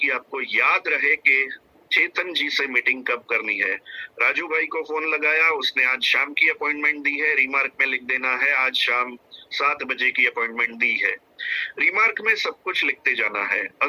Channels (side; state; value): both; identical; correlation 1.00